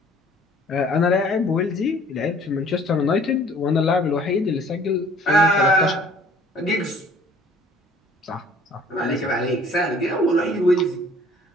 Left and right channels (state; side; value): normal; both; correlation 0.54